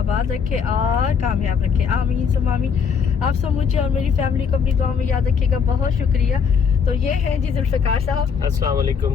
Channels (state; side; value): quieter; right; 6.4 dB